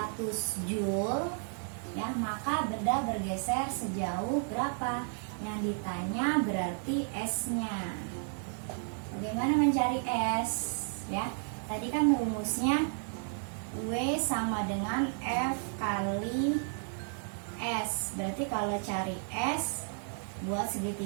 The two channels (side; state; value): left; silent; 56 dB below the other